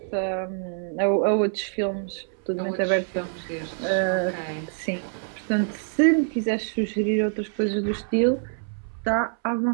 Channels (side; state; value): left; silent; 61 dB below the other